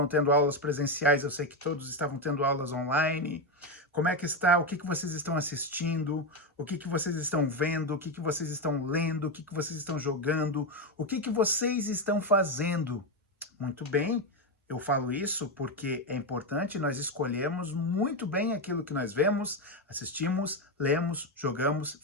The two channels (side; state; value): both; normal; correlation 0.10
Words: tendo aulas presenciais, eu sei que todos estavam tendo aulas online. Como é que está? O que vocês estão assistindo? O que vocês estão vendo? O que vocês estão lendo? O que vocês estão jogando? O que vocês estão fazendo? Muito bem. Eu falo isso porque é importante nós escolhermos muito bem aquilo que nós vemos, assistimos, lemos, jogamos,